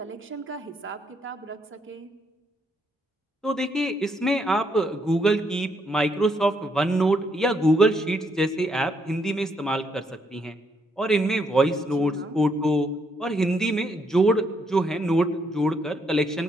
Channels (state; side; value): normal; both; correlation 0.74